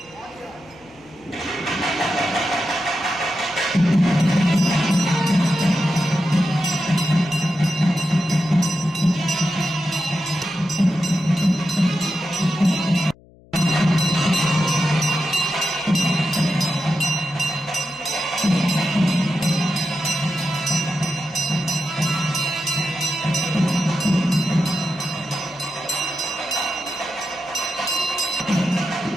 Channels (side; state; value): left; noise; hum, 26 dB below the sound